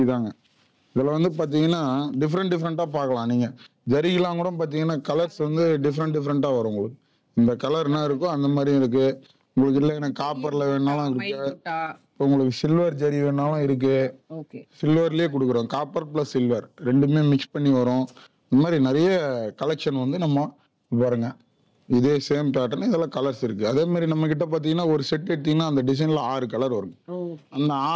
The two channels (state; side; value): identical; both; correlation 1.00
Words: தாங்க. இதுல வந்து பாத்தீங்கன்னா டிஃப்ரெண்டா பார்க்கலாம். நீங்க ஜரிகெல்லாம் கூட பாத்தீங்கன்னா கலர்ஸ் வந்து டிஃப்ரெண்டா வரும் உங்களுக்கு. இந்த கலர் என்ன இருக்கோ அந்த மாதிரி இருக்கு உங்களுக்கு. இல்லை எனக்கு காப்பர்ல வேணாலும் இருக்கு, உங்களுக்கு சில்வர் ஜரி வேணாலும் இருக்கு. சில்வர்லயே கொடுக்குறோம். காப்பர் பிளஸ் சில்வர் ரெண்டுமே மிக்ஸ் பண்ணி வரும். இந்த மாதிரி நிறைய கலெக்ஷன் வந்து நம்ம பாருங்க. இதே சேம் பேட்டர்ன் இதெல்லாம் கலர்ஸ் இருக்கு. அதே மாதிரி நம்ம கிட்ட பாத்தீங்கன்னா ஒரு செட் எடுத்தீங்கன்னா அந்த டிசைன்ல 6 கலர் வரும். அந்த